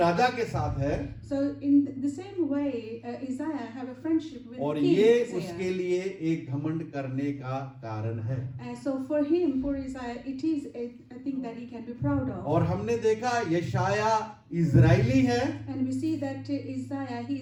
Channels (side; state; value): both; identical; correlation 1.00